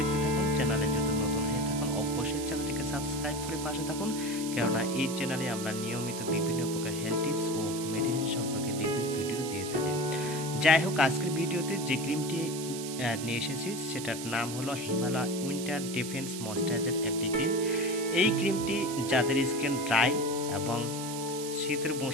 থাকুন। চ্যানেলে যদি নতুন হয়ে থাকুন অবশ্যই চ্যানেলটিকে সাবস্ক্রাইব করে পাশে থাকুন, কেননা এই চ্যানেলে আমরা নিয়মিত বিভিন্ন প্রকার হেলথ টিপস ও মেডিসিন সম্পর্কে রিভিউ ভিডিও দিয়ে থাকি। যাই হোক, আজকের ভিডিওতে যে ক্রিমটি নিয়ে এসেছি সেটার নাম হলো হিমালয় উইন্টার ডিফেন্স ময়েশ্চারাইজার একটি ক্রিম। এই ক্রিমটি যাদের স্কিন ড্রাই এবং শীতের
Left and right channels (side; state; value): right; noise; hiss, 9 dB below the sound